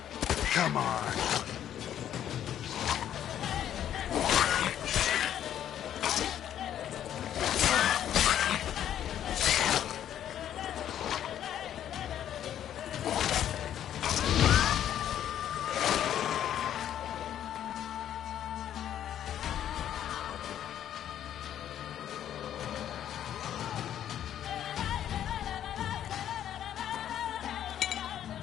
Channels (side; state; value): right; quieter; 10.6 dB